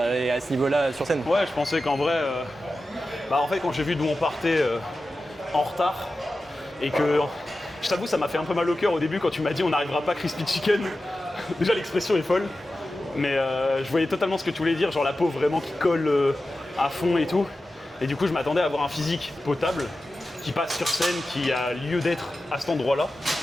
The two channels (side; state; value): both; normal; correlation 0.93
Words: à ce niveau-là sur scène. Ouais, je pensais qu'en vrai, en fait, quand j'ai vu d'où on partait en retard, et que, je t'avoue, ça m'a fait un peu mal au cœur au début quand tu m'as dit on n'arrivera pas crispy chicken. Déjà, l'expression est folle, mais je voyais totalement ce que tu voulais dire, genre la peau vraiment qui colle à fond et tout. Et du coup, je m'attendais à avoir un physique potable qui passe sur scène, qui a lieu d'être à cet endroit-là.